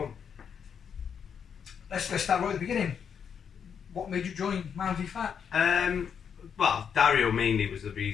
Let's start right at the beginning. What made you join Man v Fat? Well, Dario mainly was the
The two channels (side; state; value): right; quieter; 7.4 dB